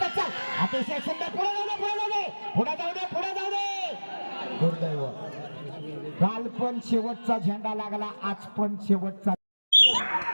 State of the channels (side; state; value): both; inverted; correlation -1.00